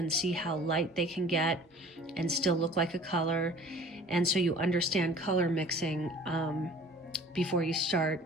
see how light they can get and still look like a color. And so you understand color mixing before you start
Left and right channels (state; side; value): normal; both; correlation 0.47